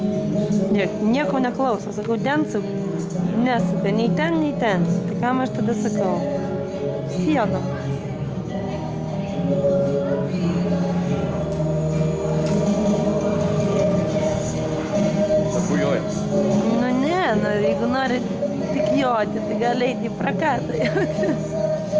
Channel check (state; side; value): identical; both; correlation 1.00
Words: Nieko neklauso, sakau, densuk, nesuka, nei ten. Tai kam aš tada sakau? Siena. Bujoja. Nu ne, jeigu nori tik joti, tai gali eiti į prakatą.